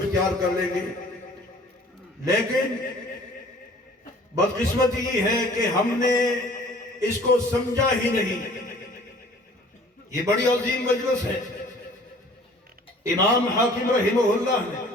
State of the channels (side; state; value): both; normal; correlation 0.51